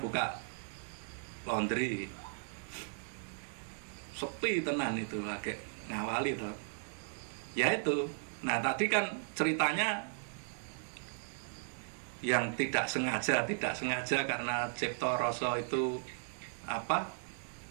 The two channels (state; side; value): silent; left; digital silence